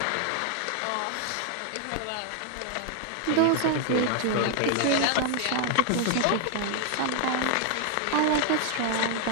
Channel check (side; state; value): both; different; correlation 0.00